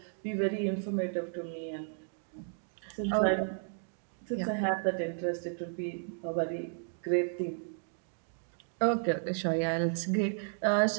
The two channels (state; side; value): silent; left; digital silence